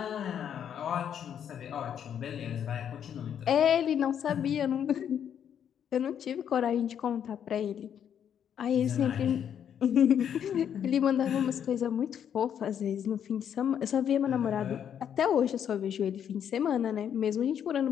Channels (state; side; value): quieter; right; 8.9 dB